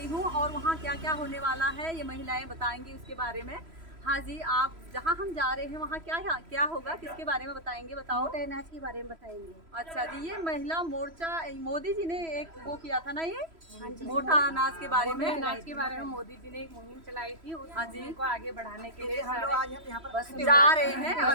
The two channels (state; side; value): late; left; 3.0 ms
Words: हूँ और वहाँ क्या क्या होने वाला है ये महिलाएं बताएंगी उसके बारे में। हाँ जी, आप जहाँ हम जा रहे हैं वहाँ क्या होगा, किसके बारे में बताएंगे? बताओ। मोटे अनाज के बारे में बताएंगे। अच्छा जी, ये महिला मोर्चा मोदी जी ने एक वो किया था ना, ये हाँ जी, मोटा अनाज के बारे में। अनाज के बारे में मोदी जी ने एक मुहिम चलाई थी, उस हाँ जी, मुहिम को आगे बढ़ाने के लिए हम लोग आज यहाँ पर जा रहे हैं,